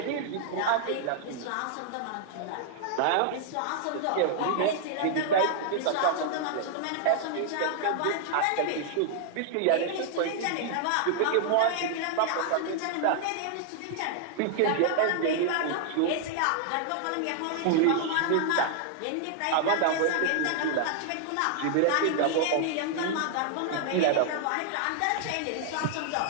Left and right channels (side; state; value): both; different; correlation -0.01